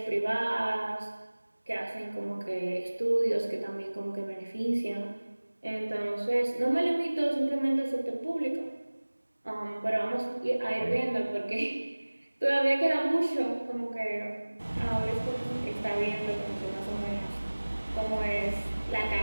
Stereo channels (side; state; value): both; inverted; correlation -1.00